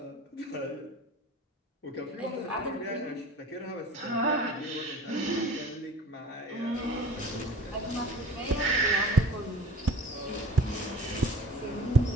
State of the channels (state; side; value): normal; both; correlation 0.43